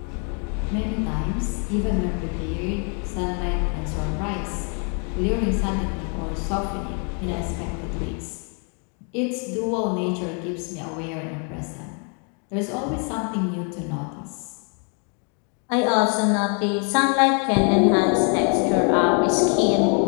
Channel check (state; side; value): quieter; right; 39.5 dB